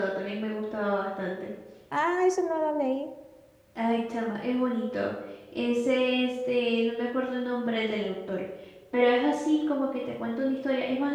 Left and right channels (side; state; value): both; identical; correlation 1.00